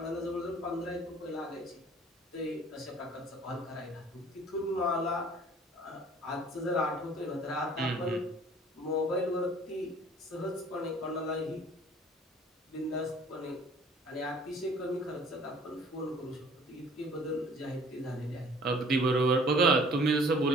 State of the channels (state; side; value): normal; both; correlation 0.52